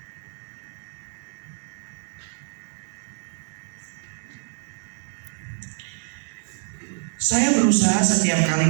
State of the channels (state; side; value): silent; left; digital silence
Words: Saya berusaha setiap kali